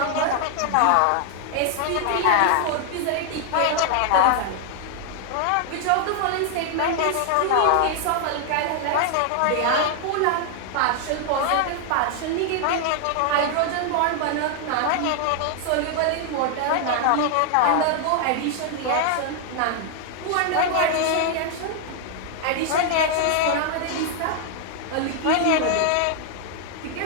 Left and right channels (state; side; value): different; both; correlation 0.00